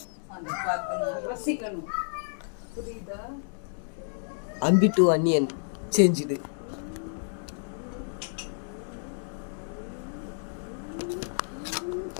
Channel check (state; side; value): silent; right; digital silence